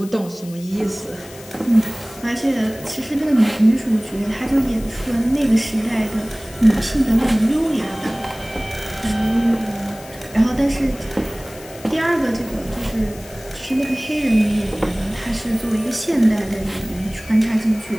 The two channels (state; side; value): noise; left; hiss, 19 dB below the sound